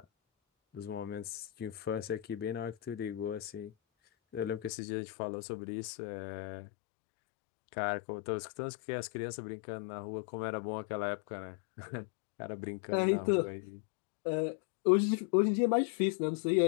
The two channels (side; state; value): right; drops out; at 4.7 s